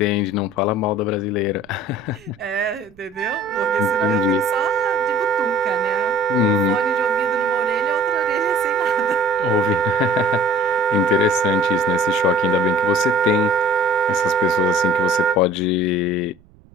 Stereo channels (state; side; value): noise; right; rumble, 29 dB below the sound